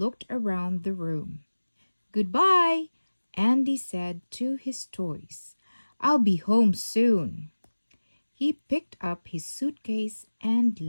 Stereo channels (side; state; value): both; inverted; correlation -1.00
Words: around the room. Goodbye, Andy said to his toys. I'll be home soon. He picked up his suitcase and